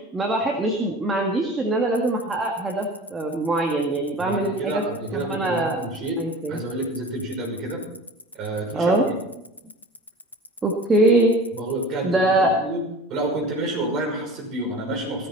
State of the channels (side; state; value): both; normal; correlation 0.39